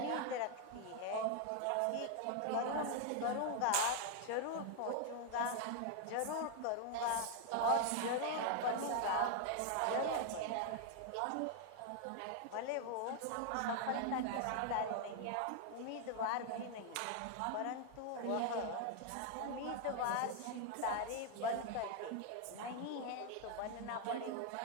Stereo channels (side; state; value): both; different; correlation 0.00